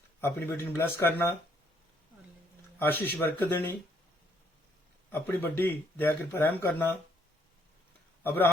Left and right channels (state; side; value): normal; both; correlation 0.69